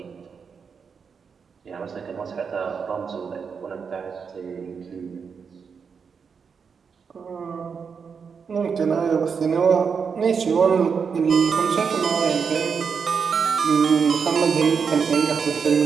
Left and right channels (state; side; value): quieter; left; 6.0 dB